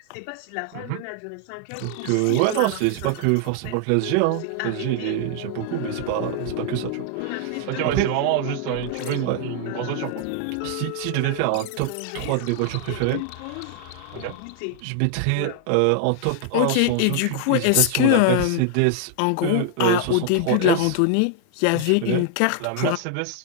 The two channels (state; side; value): different; both; correlation 0.00